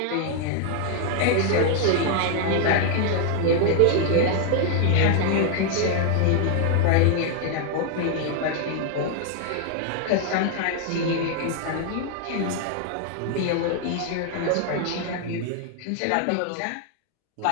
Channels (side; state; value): both; different; correlation 0.00